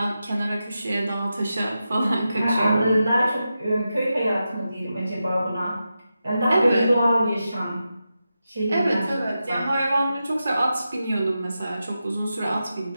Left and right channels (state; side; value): inverted; both; correlation -0.90